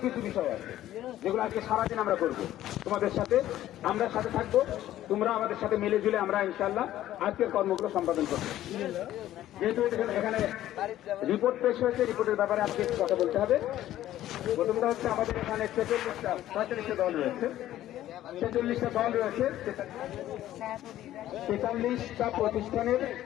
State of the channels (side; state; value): right; quieter; 13.4 dB